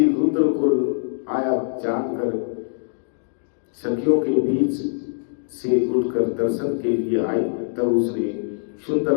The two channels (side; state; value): right; silent; digital silence